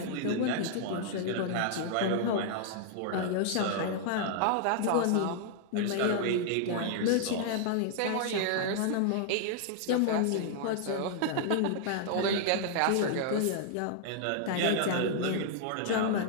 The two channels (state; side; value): different; both; correlation 0.00